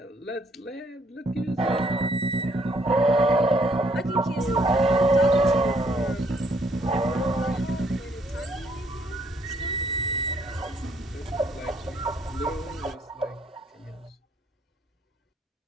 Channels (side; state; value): both; normal; correlation 0.67